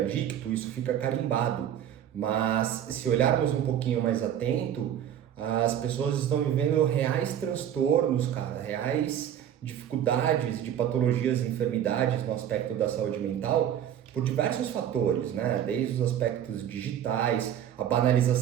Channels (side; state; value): left; quieter; 10.1 dB